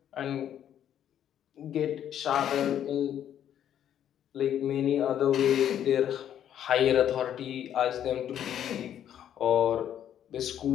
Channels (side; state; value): right; quieter; 10.2 dB